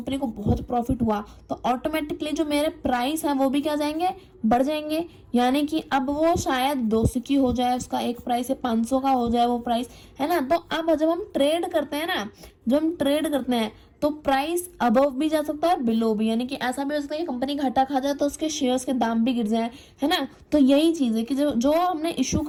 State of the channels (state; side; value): identical; both; correlation 1.00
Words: को बहुत प्रॉफिट हुआ, तो ऑटोमेटिकली जो मेरे प्राइस हैं वो भी क्या जाएंगे, बढ़ जाएंगे। यानी कि अब वो शायद 200 की हो जाए, उसका एक प्राइस है 500 का हो जाए वो प्राइस, है ना। तो अब जब हम ट्रेड करते हैं ना, जब हम ट्रेड करते हैं तो प्राइस अबव भी जा सकता है, बिलो भी, यानी कि ऐसा भी हो सकता है कि कंपनी घाटा खा जाए तो उसके शेयर्स के दाम भी गिर जाए, है ना। तो यही चीज है कि जो हमने इशू